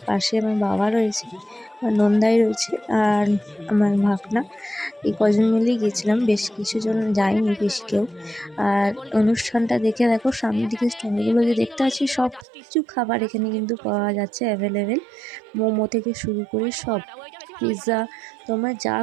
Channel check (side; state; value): left; drops out; at 12.5 s